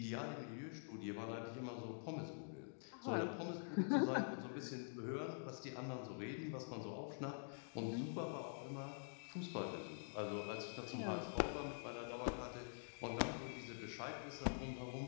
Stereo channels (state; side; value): silent; right; digital silence